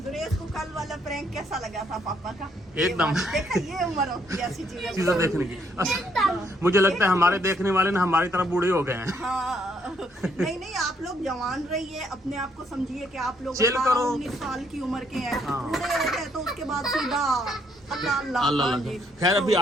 सुरेश को कल वाला प्रैंक कैसा लगा था पापा का? एकदम। देखा, ये उम्र होती है ऐसी चीजें देखने की। मुझे लगता है हमारे देखने वाले ना हमारी तरफ बूढ़े हो गए हैं। हाँ, नहीं, आप लोग जवान रहिए, अपने आप को समझिए कि आप लोग चिल करो। 19 साल की उम्र के हैं। हाँ। बूढ़े हो गए तो उसके बाद सीधा अल्लाह अल्लाह। अल्लाह हाँ अल्लाह। जी। खैर अभी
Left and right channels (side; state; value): both; normal; correlation 0.71